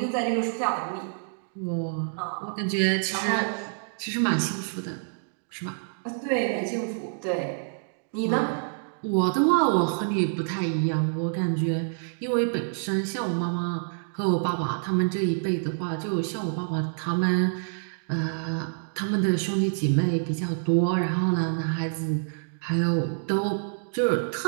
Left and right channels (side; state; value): left; silent; digital silence